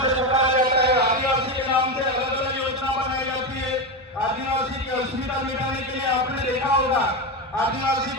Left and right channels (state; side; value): normal; both; correlation 0.14